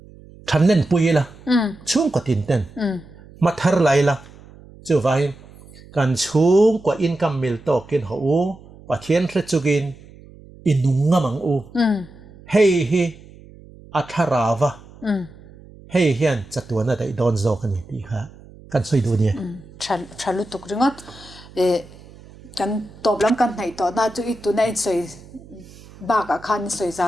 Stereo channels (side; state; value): right; noise; hum, 21 dB below the sound